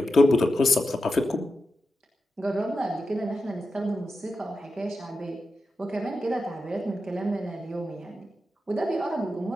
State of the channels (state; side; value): normal; both; correlation 0.90